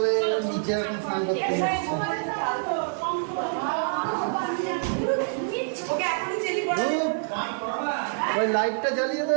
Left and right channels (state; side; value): silent; left; digital silence